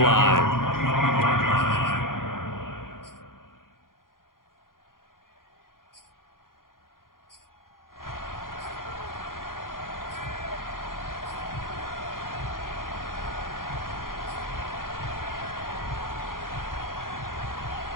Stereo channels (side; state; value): right; late; 0.91 ms